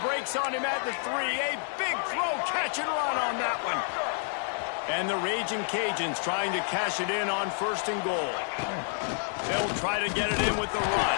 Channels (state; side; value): silent; right; 59 dB below the other